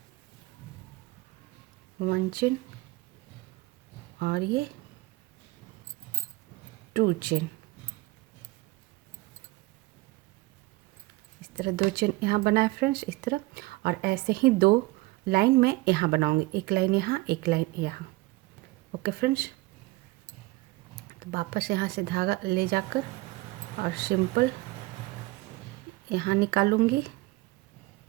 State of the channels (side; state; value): left; quieter; 21.3 dB